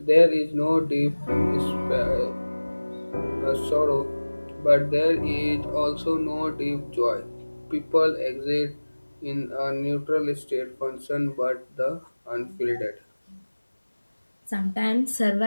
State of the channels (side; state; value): both; inverted; correlation -1.00